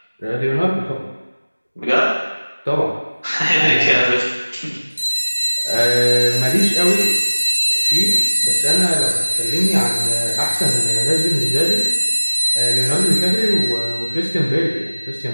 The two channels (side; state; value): both; inverted; correlation -1.00